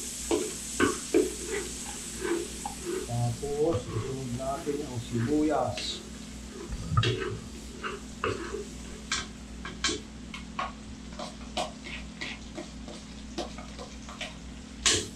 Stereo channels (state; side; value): identical; both; correlation 1.00